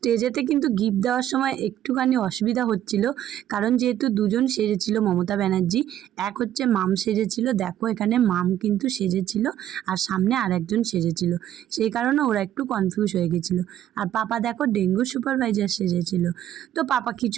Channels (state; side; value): quieter; left; 11.7 dB